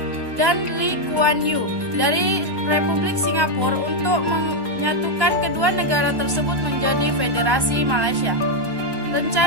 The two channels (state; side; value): late; left; 1.1 ms